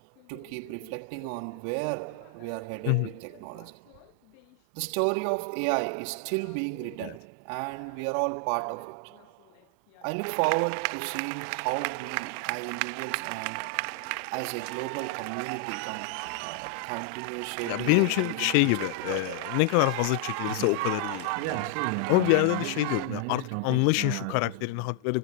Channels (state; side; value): different; both; correlation 0.00